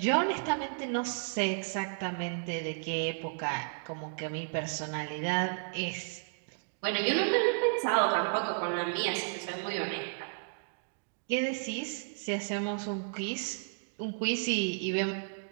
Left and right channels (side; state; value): left; silent; digital silence